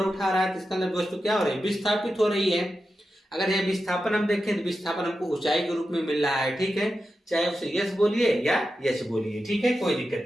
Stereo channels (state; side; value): normal; both; correlation 0.90